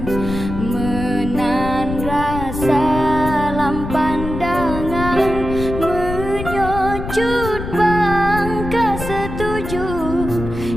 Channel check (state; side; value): noise; left; rumble, 7 dB below the sound